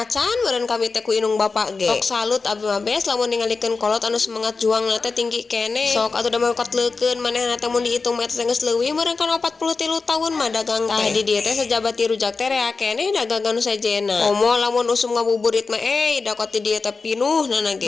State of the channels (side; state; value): right; quieter; 4.3 dB